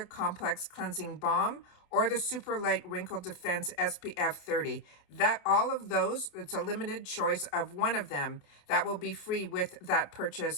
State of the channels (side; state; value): right; late; 28 ms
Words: complex cleansing balm or the super light wrinkle defense SPF 30. That all of those, it's a limited choice of one of them that will be free with that